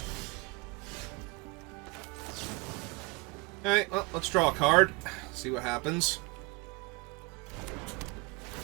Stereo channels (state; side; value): quieter; left; 26.9 dB